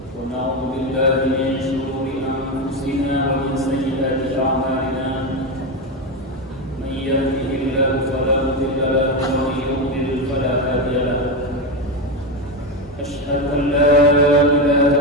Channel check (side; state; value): both; normal; correlation 0.13